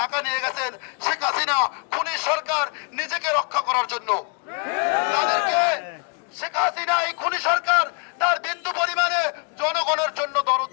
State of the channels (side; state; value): right; quieter; 37.1 dB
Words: ঢাকা নিয়ে গেছেন শেখ হাসিনা খুনি সরকার নিজেকে রক্ষা করার জন্য। তাদেরকে শেখ হাসিনা এই খুনি সরকার তার বিন্দু পরিমাণে জনগণের জন্য দরদ